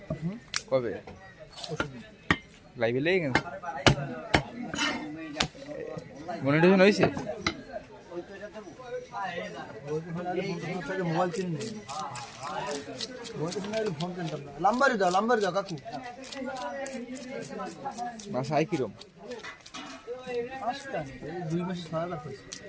কবে লাইভে লেগে গেছে মনিটাইজেশন হয়েছে মোবাইল কিনে ফোন কিনতাম না লাম্বারি দাও কাকু বাসায় কিরম 2 মাসে 6 লাখ হয়েছে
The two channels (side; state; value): both; identical; correlation 1.00